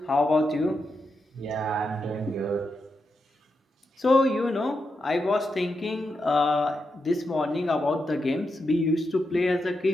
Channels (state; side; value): normal; both; correlation 0.86